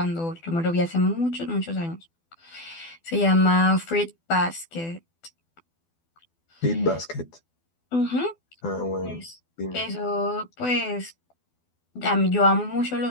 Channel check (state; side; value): late; right; 12 ms